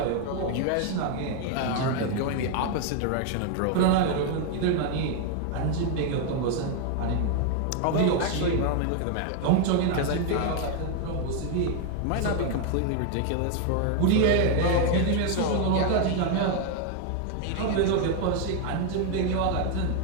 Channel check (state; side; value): different; both; correlation 0.00